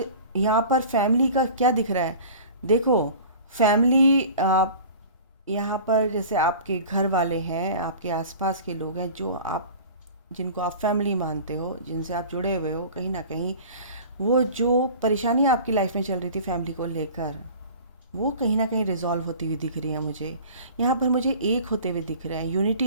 यहाँ पर फैमिली का क्या दिख रहा है, देखो फैमिली यहाँ पर जैसे आपके घर वाले हैं, आपके आसपास के लोग हैं, जो आप जिनको आप फैमिली मानते हो, जिनसे आप जुड़े हुए हो, कहीं ना कहीं वो जो परेशानी आपकी लाइफ में चल रही थी फैमिली को लेकर, वो कहीं ना कहीं रिजॉल्व होती हुई दिख रही है मुझे। यहाँ पर मुझे एक होते हुए दिख रहे हैं,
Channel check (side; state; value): both; inverted; correlation -0.42